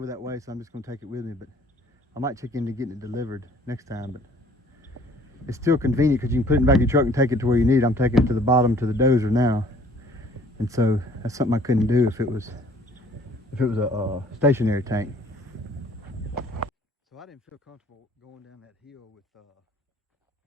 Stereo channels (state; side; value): normal; both; correlation 0.56